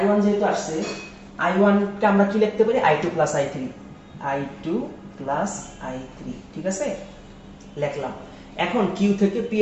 যেহেতু আসছে, I1 কে আমরা কি লিখতে পারি, I2 plus I3, I2 plus I3, ঠিক আছে, লিখলাম। এখন কিউ থেকে পি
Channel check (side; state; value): both; identical; correlation 1.00